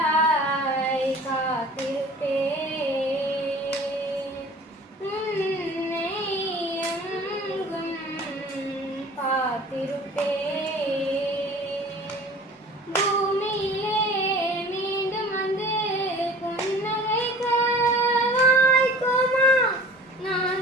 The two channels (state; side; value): normal; both; correlation 0.43